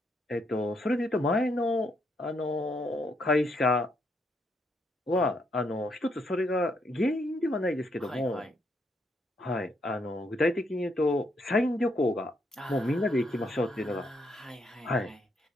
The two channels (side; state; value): both; normal; correlation 0.75